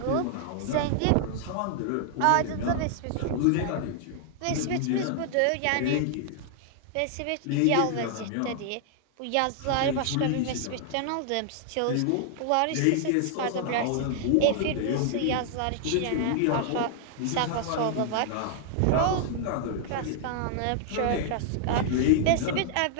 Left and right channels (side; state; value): both; different; correlation -0.01